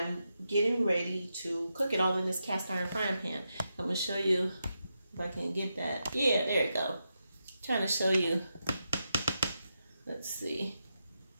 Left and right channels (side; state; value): both; inverted; correlation -0.86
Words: getting ready to cook it all in this cast iron frying pan. I'm going to show you if I can get that. Yeah, there you go. Trying to show you. Let's see